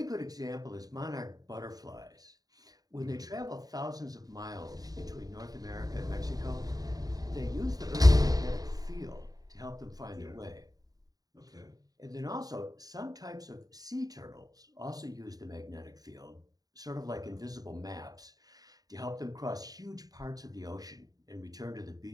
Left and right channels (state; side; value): late; left; 0.18 ms